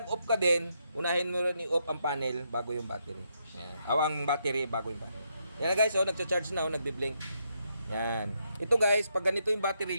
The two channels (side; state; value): both; inverted; correlation -0.78